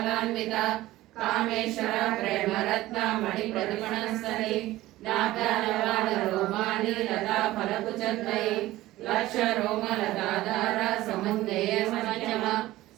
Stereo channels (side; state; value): left; quieter; 16.7 dB